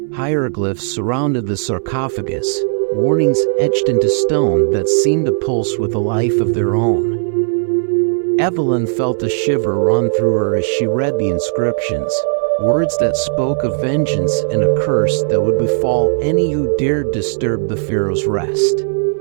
Hieroglyphs surrounded the sarcophagus, warnings etched into stone that seemed to pulse with a life of their own. Evelyn felt a shiver run through her as she read the inscriptions, words that spoke of vengeance and a curse that would befall any who dared disturb the pharaoh's rest.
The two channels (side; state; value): left; silent; digital silence